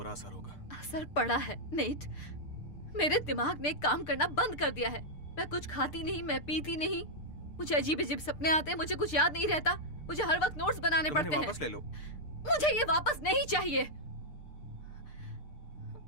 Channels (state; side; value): late; right; 6.7 ms